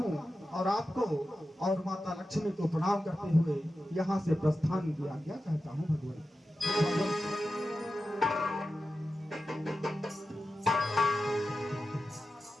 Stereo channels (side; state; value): both; normal; correlation 0.92